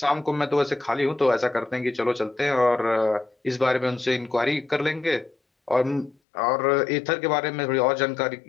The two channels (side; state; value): right; drops out; at 6.2 s